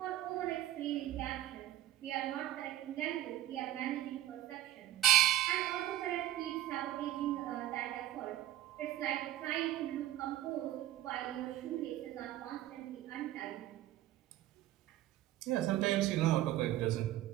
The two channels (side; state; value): left; quieter; 13.5 dB